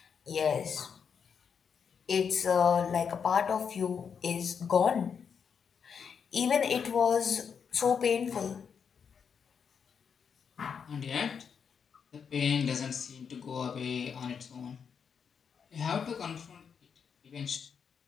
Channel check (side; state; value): right; quieter; 6.7 dB